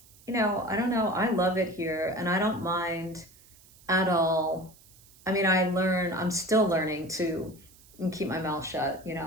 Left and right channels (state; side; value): noise; right; hiss, 26 dB below the sound